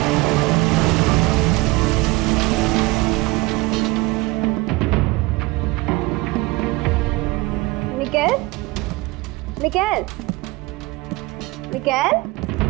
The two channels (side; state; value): left; quieter; 21.9 dB